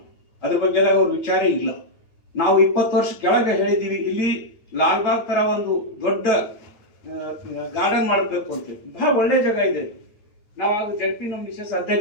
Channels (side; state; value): right; late; 9.2 ms